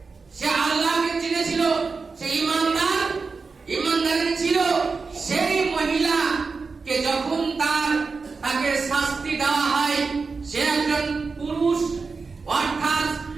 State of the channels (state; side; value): quieter; left; 4.5 dB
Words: সে আল্লাহকে চিনেছিল, সে ইমানদার ছিল। সেই মহিলাকে যখন তাকে শাস্তি দেওয়া হয়, সে একজন পুরুষ অর্থাৎ